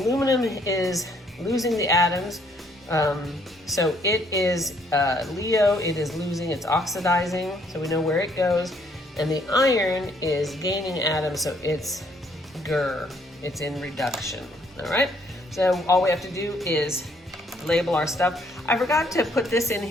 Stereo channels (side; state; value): both; normal; correlation 0.66